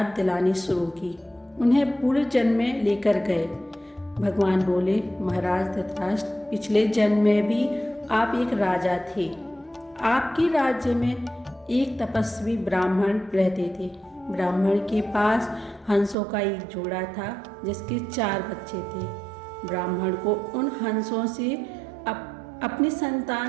दिलानी शुरू की। उन्हें पूर्व जन्म में लेकर गए। भगवान बोले, महाराज धृतराष्ट्र, पिछले जन्म में भी आप एक राजा थे। आपके राज्य में एक तपस्वी ब्राह्मण रहते थे। ब्राह्मण के पास हंसों का एक जोड़ा था जिसके 4 बच्चे थे। ब्राह्मण को उन हंसों से अपनी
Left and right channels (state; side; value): drops out; left; at 16.2 s